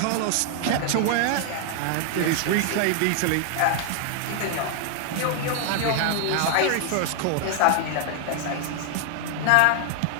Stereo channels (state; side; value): different; both; correlation 0.00